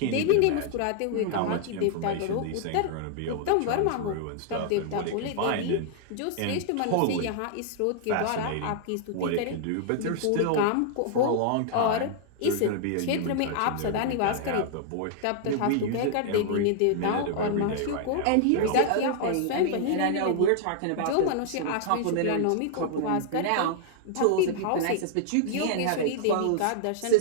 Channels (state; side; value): different; both; correlation -0.01